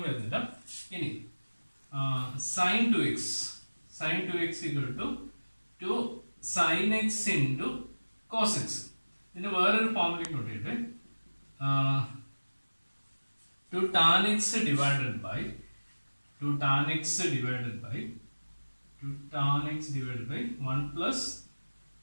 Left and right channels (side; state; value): both; inverted; correlation -1.00